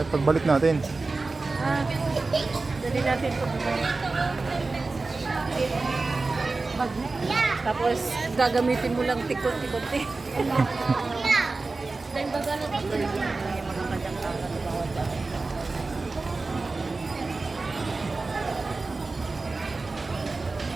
pagbalik natin. Dali natin ito. Bagnet. Tapos gagamitin mo lang tikot-tikot eh. Dahil baga na ito. Yung mga kanyang-kakan na bawat dahil.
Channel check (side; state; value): left; quieter; 3.6 dB